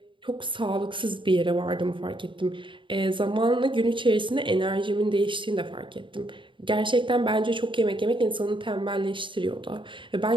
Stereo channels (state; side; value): late; left; 0.24 ms